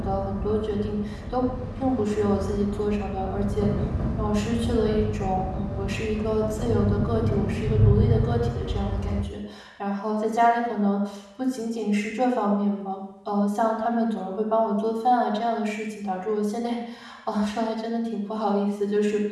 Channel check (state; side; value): identical; both; correlation 1.00